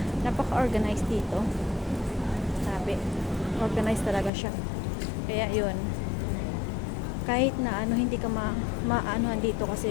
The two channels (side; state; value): right; drops out; at 4.3 s